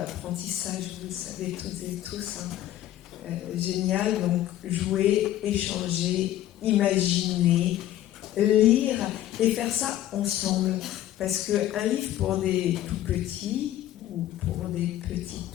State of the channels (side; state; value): right; quieter; 13.2 dB